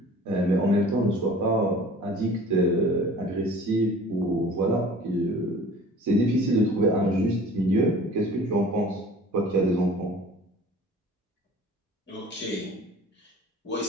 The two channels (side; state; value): both; normal; correlation 0.46